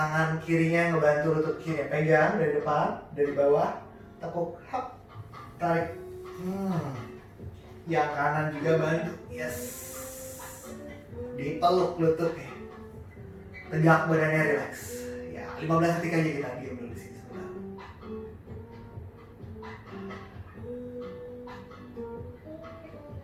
kirinya ngebantu lutut kiri, pegang dari depan, dari bawah, tekuk, hap, tarik. Yang kanan juga bantu, yes. Dipeluk lututnya. Tegak, badannya relax. Ya, 15 detik aja kita diam dulu di sini sebentar.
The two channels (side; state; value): both; identical; correlation 1.00